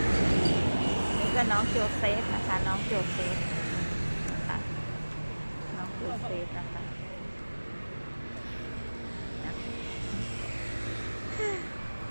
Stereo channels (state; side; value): inverted; both; correlation -1.00